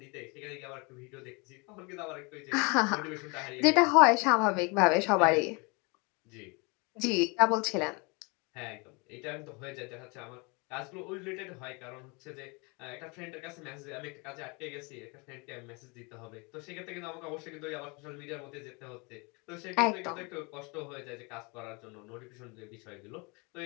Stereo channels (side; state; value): right; quieter; 29.7 dB